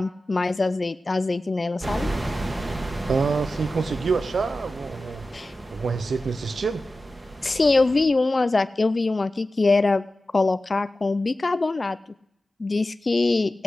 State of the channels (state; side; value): normal; both; correlation 0.94